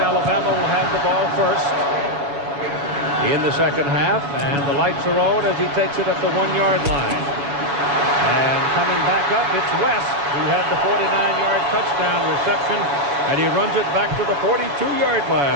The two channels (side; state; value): left; late; 7.1 ms